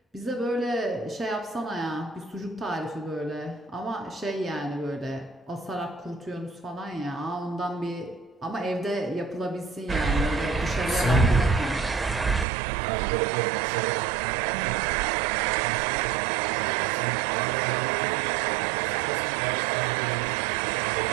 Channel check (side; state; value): left; drops out; at 12.5 s